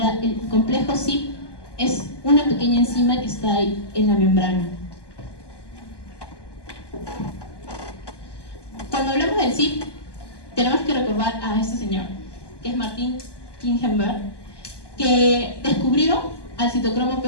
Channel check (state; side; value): late; right; 1.2 ms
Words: el complejo CYP es una pequeña enzima que está ahí en la membrana. Cuando hablamos del CYP, tenemos que recordar a este señor. que es Martin Kingenberg, que descubrió al citocromo